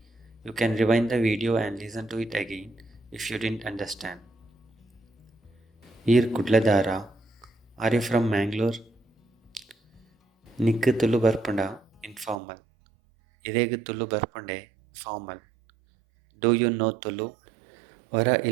You can rewind the video and listen to it again if you didn't understand. Here Kudladara. Are you from Mangalore? Nikku Tulu Barpunda, informal. Iregu Tulu Barpunde, formal. Do you know Tulu? Vara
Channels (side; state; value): left; drops out; at 12.4 s